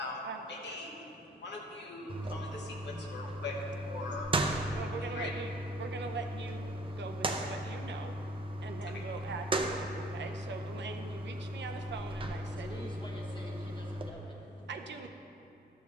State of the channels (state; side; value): normal; both; correlation 0.55